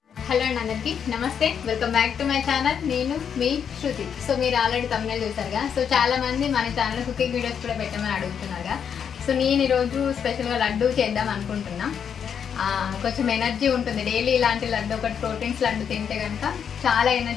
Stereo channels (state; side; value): quieter; right; 7.7 dB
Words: Hello అండి అందరికీ నమస్తే, welcome back to my channel. నేను మీ శృతి. సో మీరు ఆల్రెడీ తమిళ చూసారుగా. సో చాలా మంది మన ఛానల్ కుకింగ్ వీడియోస్ కూడా పెట్టమని అడుగుతున్నారుగా. సో నేను ఈరోజు స్పెషల్గా లడ్డు చేద్దాం అనుకుంటున్నా. కొంచెం ఎనర్జీ ఉంటుంది డైలీ ఇలాంటి లడ్డు, ఒకటి ప్రోటీన్స్ లడ్డు తింటే కనుక చాలా